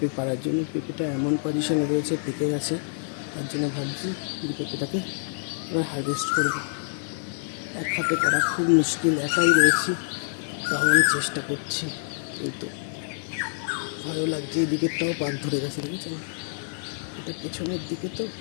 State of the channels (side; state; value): right; silent; 60 dB below the other